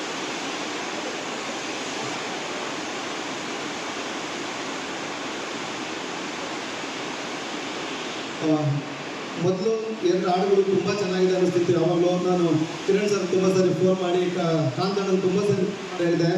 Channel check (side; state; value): both; identical; correlation 1.00